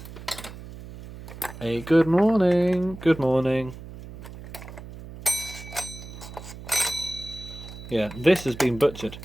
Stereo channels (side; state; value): right; noise; hum, 14 dB below the sound